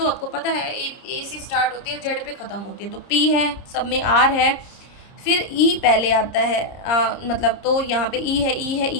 आपको पता है ए से स्टार्ट होती है, जेड पे ख़त्म होती है, तो पी है, सब में आर है, फिर ई पहले आता है, मतलब तो यहाँ पे ई है, ई है,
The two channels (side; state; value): right; late; 30 ms